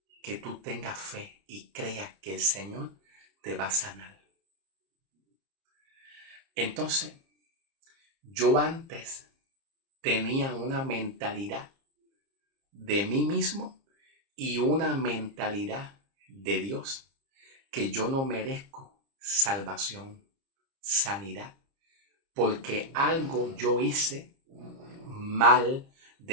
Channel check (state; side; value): late; left; 30 ms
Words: que tú tengas fe y creas que el Señor te va a sanar. Entonces, yo antes tenía una mentalidad de mí mismo y una mentalidad de Dios, que yo no merezco salvación, sanidad, porque algo yo hice mal